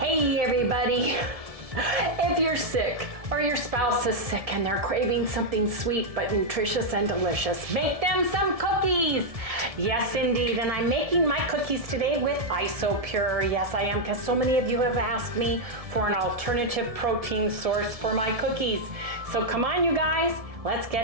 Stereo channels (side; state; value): left; late; 1.7 ms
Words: Hey everybody! If you're sick or your spouse is sick and they're craving something sweet but nutritious and delicious, make them some cookies! Yes indeed, and I'm making my cookies today with IsoPure. Yes I am, because so many of you have asked me for an alternative protein source for my cookies. So come on you guys, let's